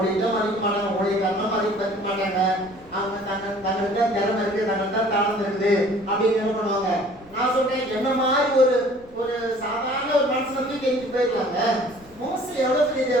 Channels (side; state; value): left; noise; rumble, 26 dB below the sound